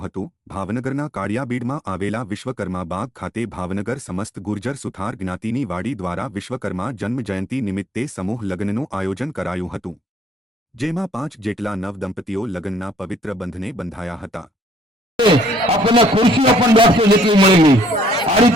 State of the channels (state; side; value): normal; both; correlation 0.65